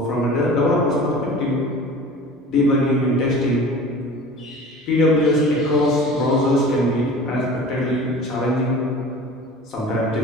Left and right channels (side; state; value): both; normal; correlation 0.40